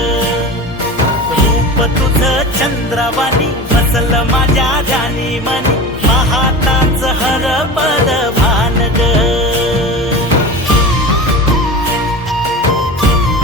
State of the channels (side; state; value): both; normal; correlation 0.32